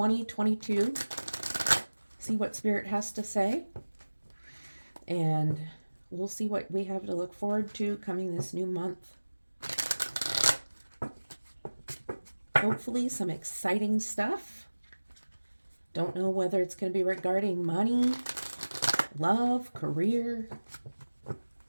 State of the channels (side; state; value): both; inverted; correlation -1.00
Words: See what Spirit has to say. And we'll see what we have to look forward to coming this new month. Hopefully some exciting stuff. Don't know whether it's going to be regarding money, love, career.